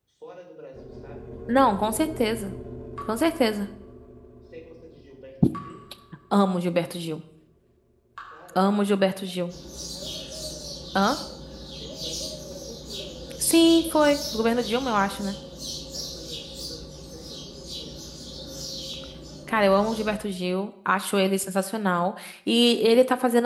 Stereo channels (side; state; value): both; identical; correlation 1.00